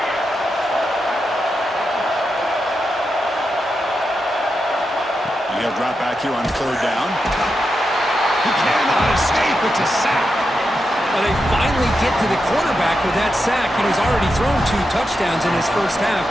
And he'll drop back here on 3rd down. He cannot escape. It's a sack. Well, they finally get to the quarterback with that sack. He's already thrown 2 touchdowns in his first half,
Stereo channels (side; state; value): both; normal; correlation 0.87